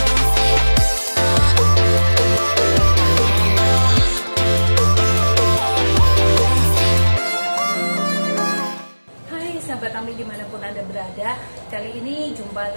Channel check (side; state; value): both; inverted; correlation -1.00